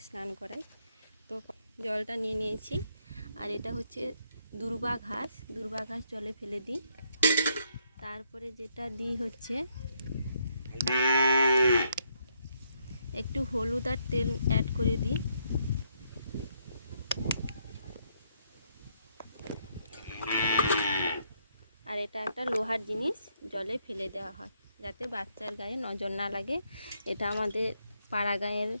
স্নান করাই। তো জলটা নিয়ে নিয়েছি। আর এটা হচ্ছে দূর্বা ঘাস জলে ফেলে দিই। তারপরে যেটা দিই হচ্ছে একটু হলুদ আর তেল অ্যাড করে দিই। আর এটা একটা লোহার জিনিস, জলে ফেলে দেওয়া হয় যাতে বাচ্চার গায়ে নজর না লাগে। এটা আমাদের পাড়া গাঁয়ের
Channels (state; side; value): inverted; both; correlation -0.73